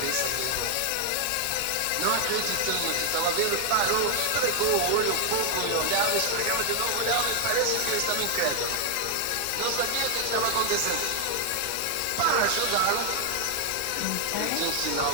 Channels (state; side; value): different; both; correlation 0.00